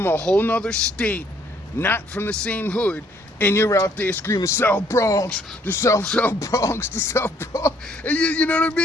a whole nother state, not from the same hood, and you're out there screaming, South Bronx, the South Bronx, the South Bronx. And you know what I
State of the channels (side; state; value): both; normal; correlation 0.65